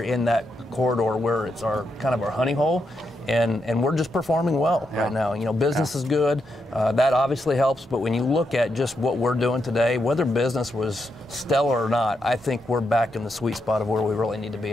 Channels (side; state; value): both; normal; correlation 0.82